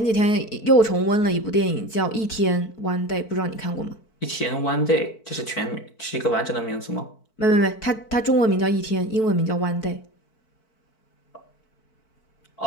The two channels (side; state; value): right; late; 4.5 ms